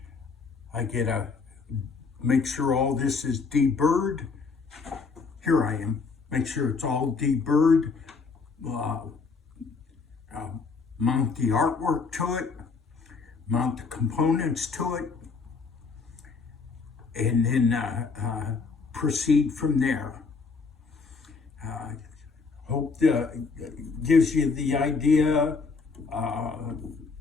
get to make sure all this is deburred. Here I am. Make sure it's all deburred. Mount the artwork to it, mount the components to it, and then proceed from there. Hope that gives you the idea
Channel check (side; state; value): right; quieter; 4.7 dB